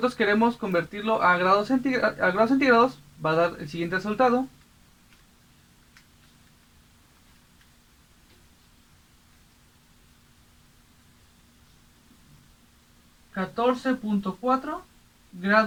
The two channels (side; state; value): both; identical; correlation 1.00